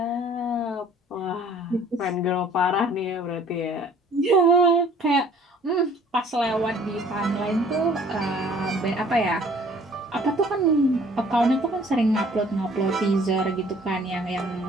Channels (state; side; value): normal; both; correlation 0.54